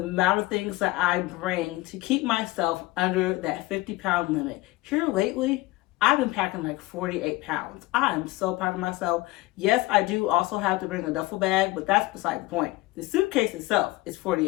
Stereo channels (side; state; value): right; quieter; 19.8 dB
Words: amount of things that I bring to keep myself under that 50-pound limit. Here lately, I've been packing like 48 pounds. I am so proud of myself. Yes, I do also have to bring a duffel bag, but that's beside the point. The suitcase itself is